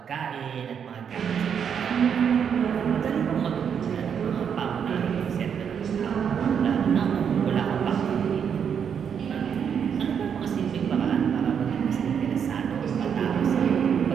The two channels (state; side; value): quieter; left; 7.6 dB